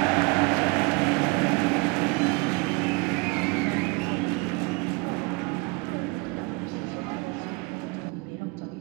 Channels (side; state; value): left; quieter; 28.1 dB